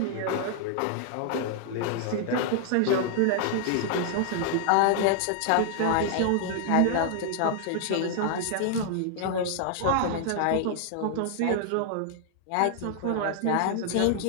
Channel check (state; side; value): different; both; correlation -0.01